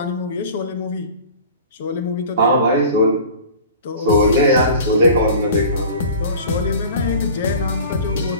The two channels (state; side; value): inverted; both; correlation -0.41